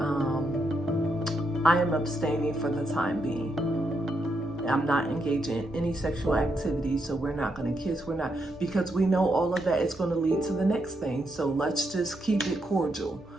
I am abstaining for the time being. I'm not engaging in any sexual activity, so we're not going to kiss. We're not, because we know all of that is going to lead to the next thing. So let's just keep it cordial,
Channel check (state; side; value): normal; both; correlation 0.80